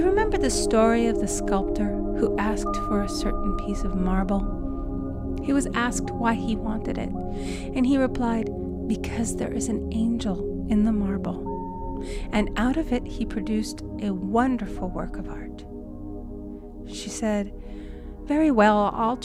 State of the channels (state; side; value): identical; both; correlation 1.00